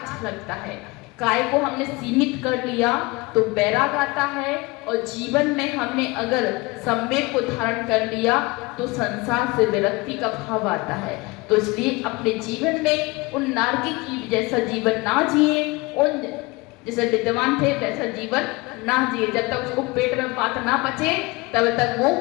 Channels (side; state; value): right; quieter; 23.9 dB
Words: झलकता है। काय को हमने सीमित कर लिया तो बैराग आता है और जीवन में हमने अगर संवेग को धारण कर लिया तो संसार से विरक्ति का भाव आता है। तो इसलिए अपने जीवन में उन नारकी की जैसा जीवन ना जिए, उन जैसे विद्वान थे वैसा जीवन ना जिए। जब तक उसको पेट में बात ना पचे तब तक वो